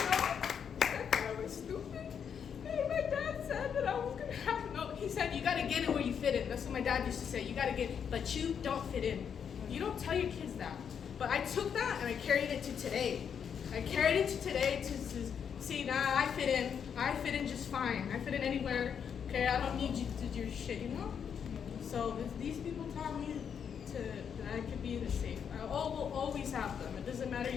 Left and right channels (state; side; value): quieter; right; 7.5 dB